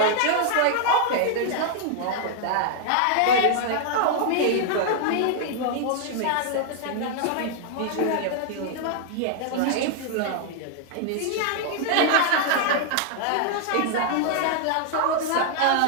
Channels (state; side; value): different; both; correlation 0.00